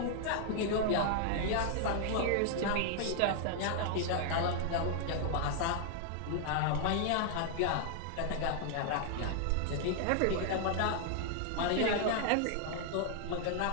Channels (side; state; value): both; different; correlation 0.00